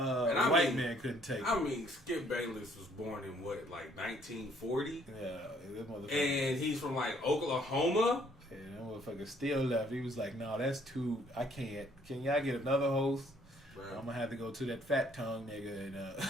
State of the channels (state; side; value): normal; both; correlation 0.64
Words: man couldn't take it. I mean, Skip Bayless was born in what, like 1940? Yeah, that motherfucker. And he's from like Oklahoma. Yeah, that motherfucker still left. He was like, "No, that's too. I can't. Can y'all get another host? Bro. I'm gonna have to go to that fat tongue nigga